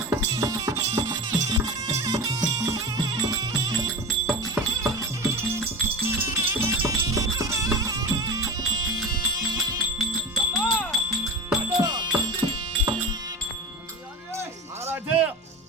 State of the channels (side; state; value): both; normal; correlation 0.29